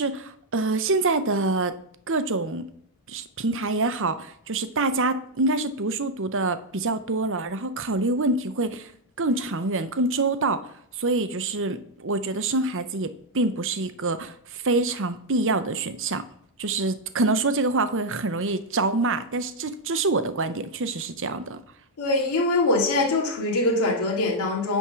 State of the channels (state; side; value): normal; both; correlation -0.01